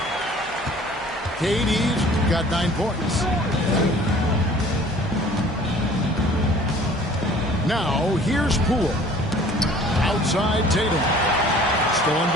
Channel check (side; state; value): both; normal; correlation 0.51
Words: KD's got 9 points. Now here's Poole. Outside Tatum. Stolen